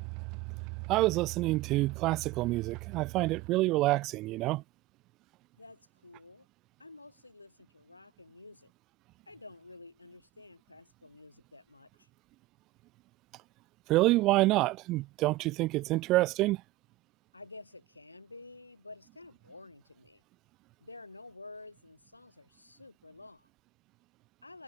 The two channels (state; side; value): quieter; left; 17.4 dB